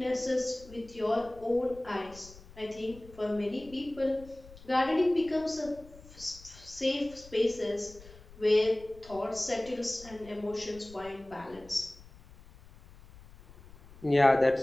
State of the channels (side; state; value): left; noise; rumble, 21 dB below the sound